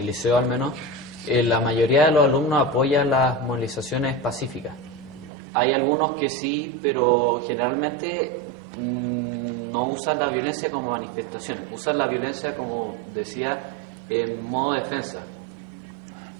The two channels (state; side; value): drops out; left; at 5.3 s